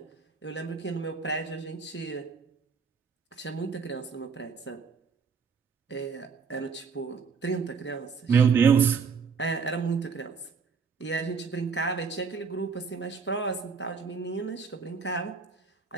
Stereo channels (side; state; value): left; quieter; 5.6 dB